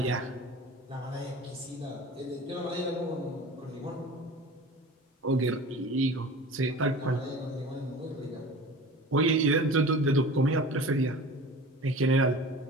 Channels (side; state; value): both; normal; correlation 0.38